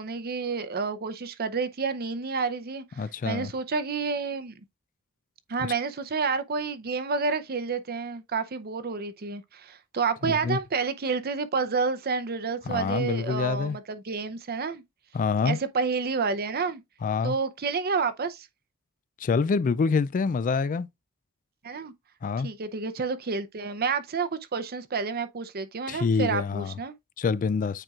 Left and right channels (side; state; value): both; normal; correlation 0.07